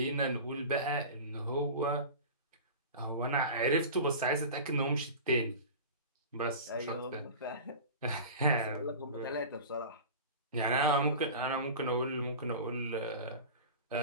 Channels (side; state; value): both; inverted; correlation -0.33